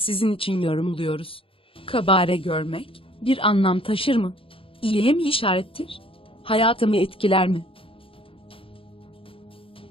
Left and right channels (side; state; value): right; late; 0.26 ms